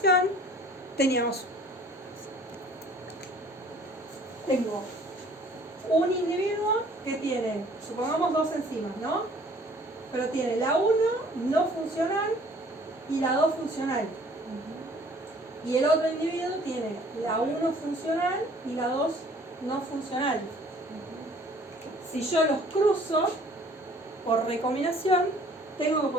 tengo un individuo que tiene, supongamos 2 enzimas, ¿no? Pero tiene la 1 no funcional y la 2 funcional. Y el otro individuo tiene la 1 funcional y la 2 no funcional. Si yo los cruzo por recombinación, tengo que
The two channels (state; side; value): normal; both; correlation 0.54